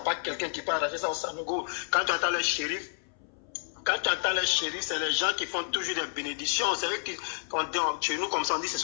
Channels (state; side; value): silent; right; 58 dB below the other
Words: pas quelqu'un qui peut arracher ça au Sanogo. Quand tu entends les shérifs, c'est les gens qui font toujours des bénédictions. C'est eux qui, chez nous, comme ça, on dit, ce